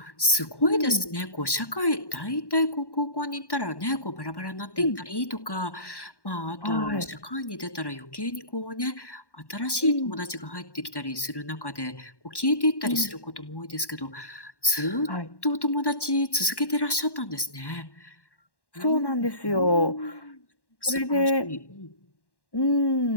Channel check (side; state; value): right; late; 1.1 ms